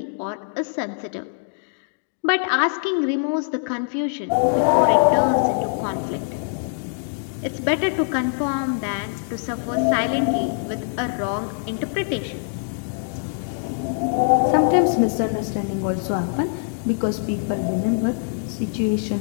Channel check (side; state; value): right; silent; digital silence